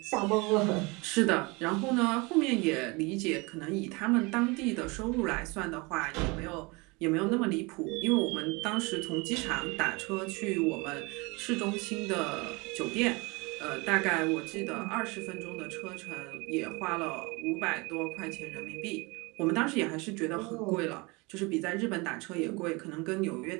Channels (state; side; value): quieter; left; 26.6 dB